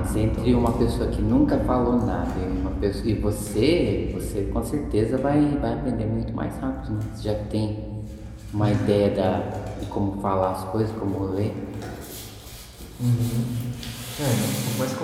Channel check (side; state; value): both; identical; correlation 1.00